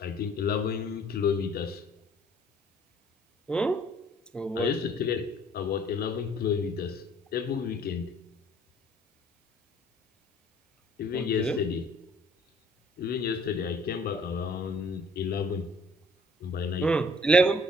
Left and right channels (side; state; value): both; normal; correlation 0.56